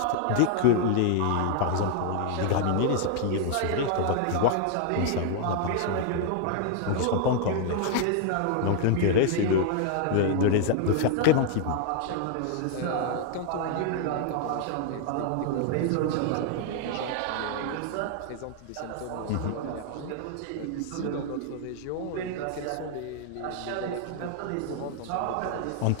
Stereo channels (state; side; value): different; both; correlation 0.00